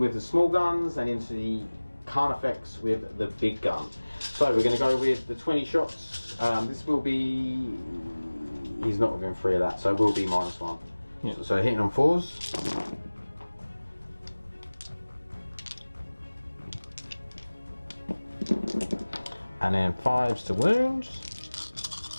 the small guns and into the Carnifex with the big gun. So we're going to go with the 20 shots. This will be... He's not within 3 of that, so it will be -1. Yeah. So hitting on 4s. And then 5s to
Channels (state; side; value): inverted; both; correlation -1.00